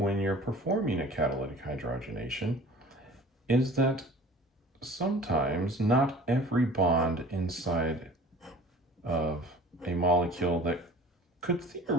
you're performing a catalytic hydrogenation is that sometimes not every bond inside of a molecule that could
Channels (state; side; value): normal; both; correlation 0.45